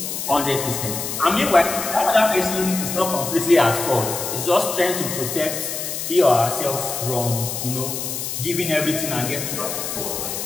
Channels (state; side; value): noise; left; hiss, 4 dB below the sound